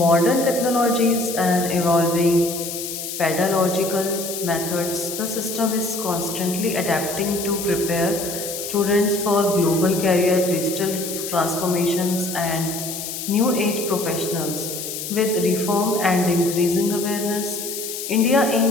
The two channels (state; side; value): noise; left; hiss, 7 dB below the sound